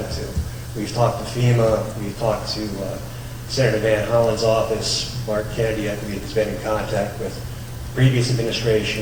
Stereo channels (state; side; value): identical; both; correlation 1.00